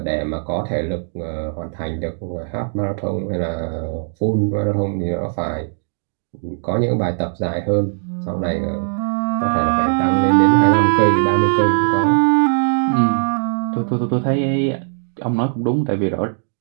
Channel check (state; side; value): silent; left; digital silence